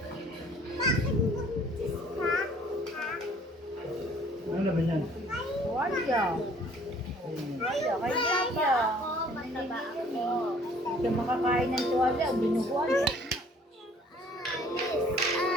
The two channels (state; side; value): normal; both; correlation 0.56